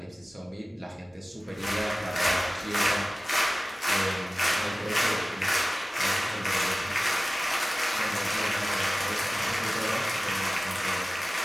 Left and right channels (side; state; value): both; normal; correlation 0.97